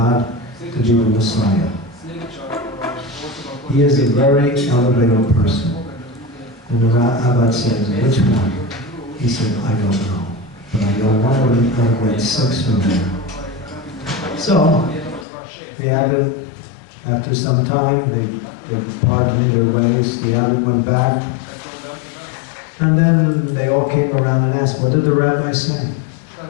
to be the Messiah. He is a very elevated person. And the Abbot said, which one? He said, I don't know. But I know one of them out of 6 from there. So, the Abbot After some time, they parted their ways. The other went back. And then they all came around and asked, what did the rabbi say?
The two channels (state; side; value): drops out; right; at 15.2 s